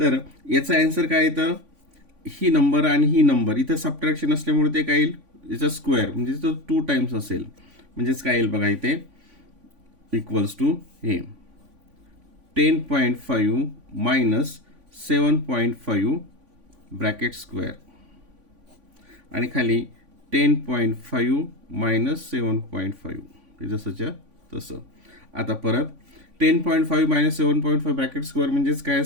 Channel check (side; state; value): left; late; 3.5 ms